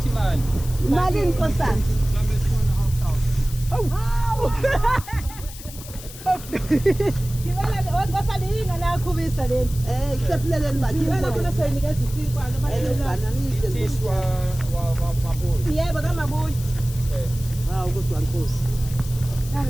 imali. Imali nkosana. Ngibala ngosana yinga nakhubisa leni. Ikusephuleleni mali. Ngibala kuna sayinikeza isinkwana abalelana. Tiswa wa mabuyi. Yebo kamabuyi. Hawu kodwa Nkosi.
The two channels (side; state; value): left; noise; hiss, 15 dB below the sound